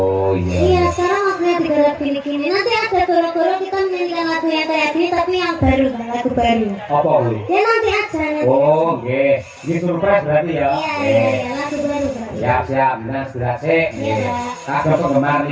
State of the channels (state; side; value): identical; both; correlation 1.00